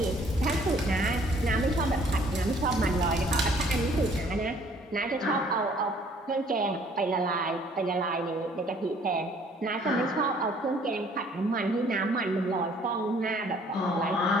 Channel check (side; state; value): both; normal; correlation 0.58